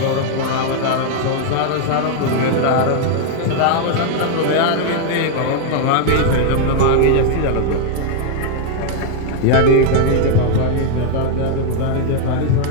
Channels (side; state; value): both; different; correlation 0.00